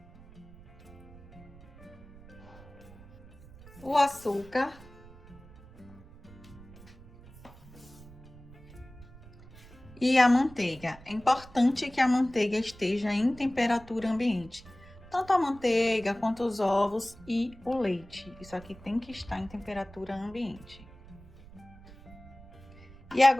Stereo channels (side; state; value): right; noise; rumble, 20 dB below the sound